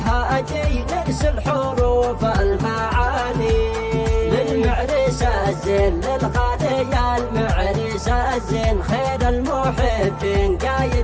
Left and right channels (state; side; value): identical; both; correlation 1.00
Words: نرسل حروف المعاني. للمعرس الزين للغالي يا المعرس الزين، خير المحبين